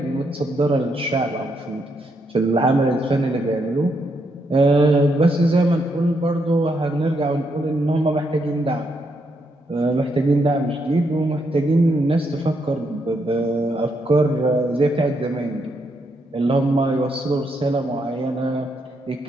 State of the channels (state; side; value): normal; both; correlation 0.78